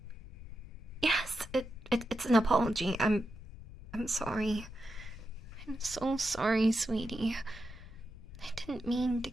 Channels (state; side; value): noise; left; rumble, 14 dB below the sound